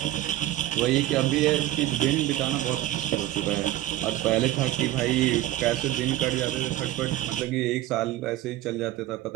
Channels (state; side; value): quieter; left; 14.8 dB